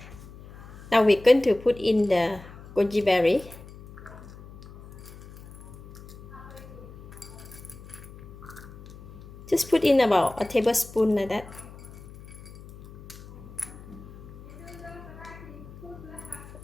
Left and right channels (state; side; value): noise; left; hum, 17 dB below the sound